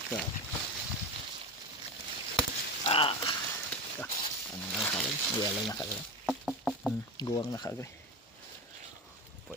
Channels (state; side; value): normal; both; correlation 0.24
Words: Ano na ka-agri? Yellow na ka-agri. Guwang na ka-agri.